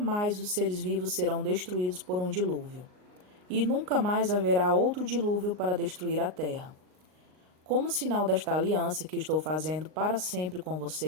os seres vivos serão destruídos por um dilúvio, e nunca mais haverá outro dilúvio para destruir a terra. Como sinal desta aliança que estou fazendo para sempre com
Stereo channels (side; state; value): left; late; 38 ms